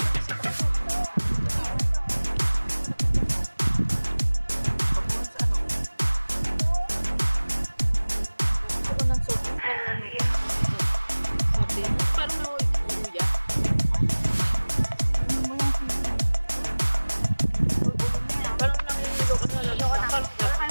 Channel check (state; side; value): inverted; both; correlation -1.00